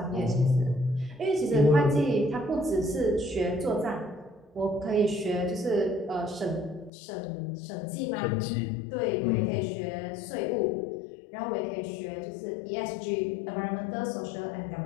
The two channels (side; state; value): right; drops out; at 6.9 s